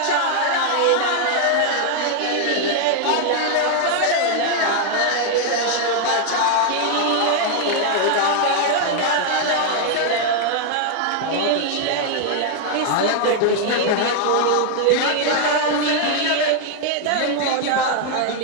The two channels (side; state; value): both; different; correlation 0.00